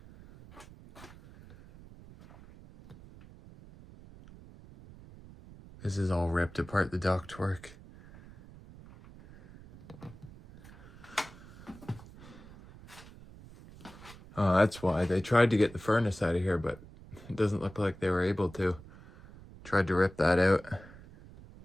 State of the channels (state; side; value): noise; right; rumble, 19 dB below the sound